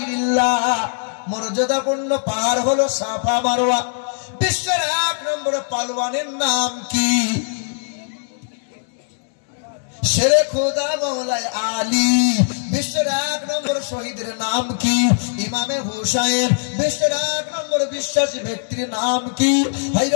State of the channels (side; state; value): right; silent; digital silence